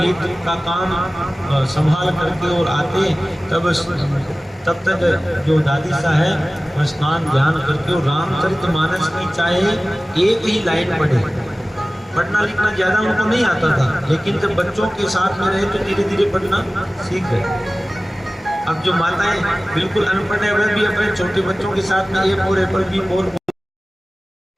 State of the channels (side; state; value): both; normal; correlation 0.97